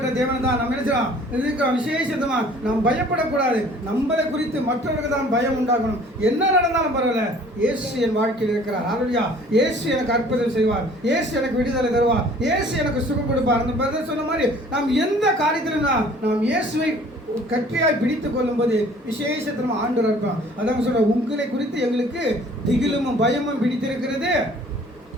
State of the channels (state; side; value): normal; both; correlation 0.52